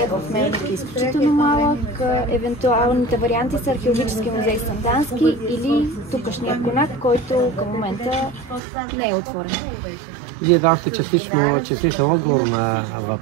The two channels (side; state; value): left; drops out; at 8.6 s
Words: в Мелник е изключително малък. Евентуалните варианти са археологически музей Сандански или тукашния Конак, който към момента не е отворен. Вие дадохте частично отговор на